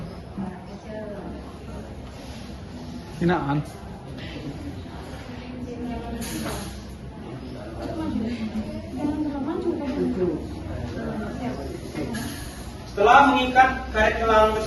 Hinaan. Setelah mengikat karet gelang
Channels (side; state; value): both; identical; correlation 1.00